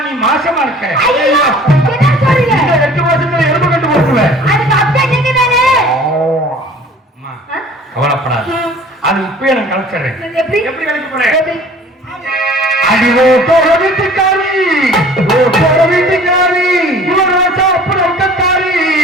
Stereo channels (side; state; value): both; normal; correlation 0.49